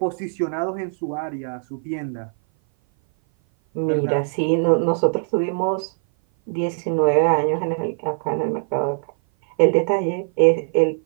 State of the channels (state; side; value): silent; left; 57 dB below the other